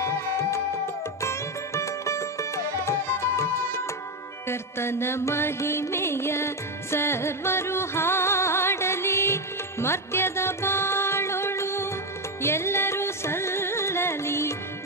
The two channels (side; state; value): both; normal; correlation 0.09